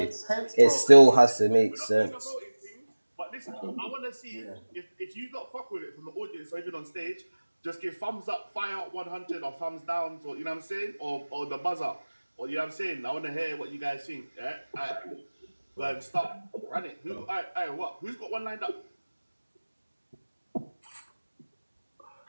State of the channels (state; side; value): inverted; both; correlation -1.00